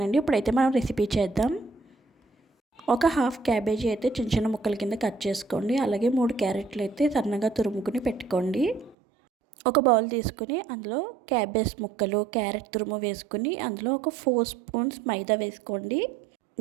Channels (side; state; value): left; drops out; at 9.0 s